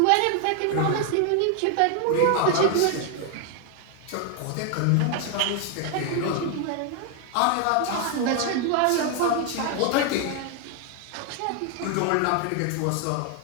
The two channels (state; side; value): different; both; correlation 0.00